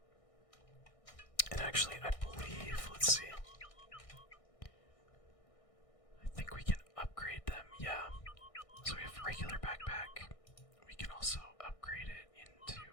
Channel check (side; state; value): right; late; 1.6 ms